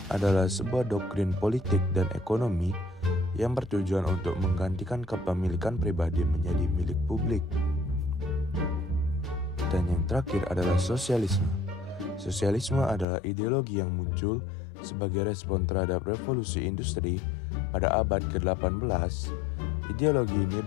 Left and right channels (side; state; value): right; drops out; at 13.1 s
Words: adalah sebuah doktrin politik dan ekonomi yang bertujuan untuk menggantikan kepemilikan pribadi menjadi milik publik. Dan yang terakhir adalah sosialisme. Sosialisme adalah ideologi yang muncul sebagai respon terhadap revolusi industri pada abad ke-18. Ideologi ini